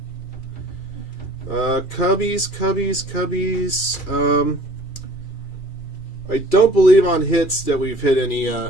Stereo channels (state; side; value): late; right; 2.4 ms